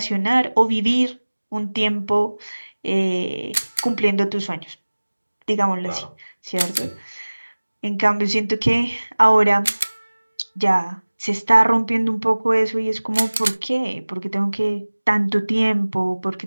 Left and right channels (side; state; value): both; inverted; correlation -1.00